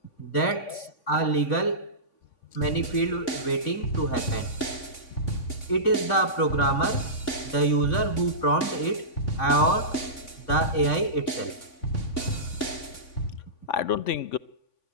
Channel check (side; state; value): right; late; 3.5 ms